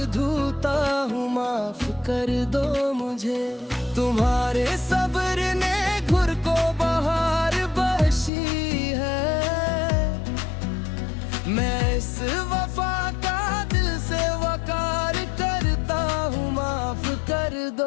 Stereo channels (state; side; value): drops out; right; at 8.3 s